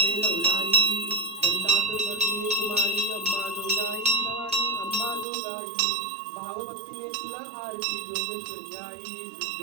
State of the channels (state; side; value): drops out; left; at 5.2 s